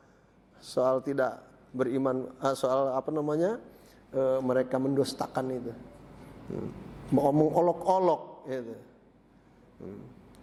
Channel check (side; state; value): both; identical; correlation 1.00